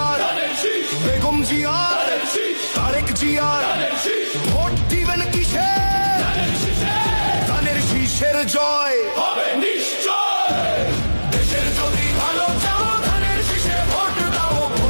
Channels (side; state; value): both; inverted; correlation -1.00